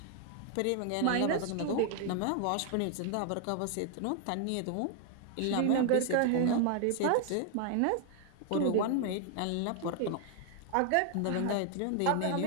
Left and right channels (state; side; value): different; both; correlation 0.00